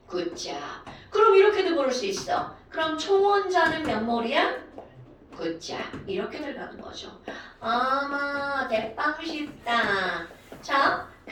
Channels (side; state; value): both; identical; correlation 1.00